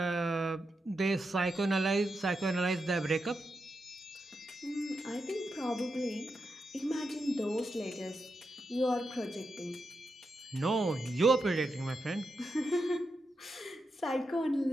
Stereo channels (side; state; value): both; normal; correlation 0.86